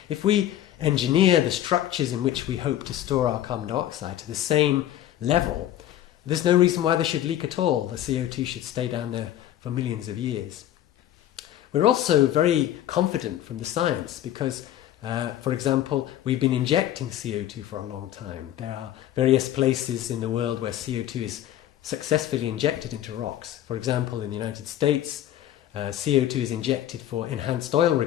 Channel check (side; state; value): right; quieter; 12.2 dB